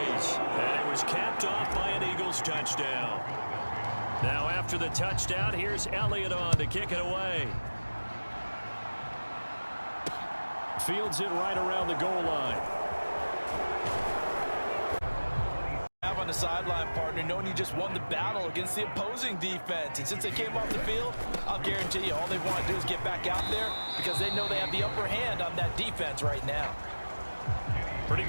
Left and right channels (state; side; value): inverted; both; correlation -1.00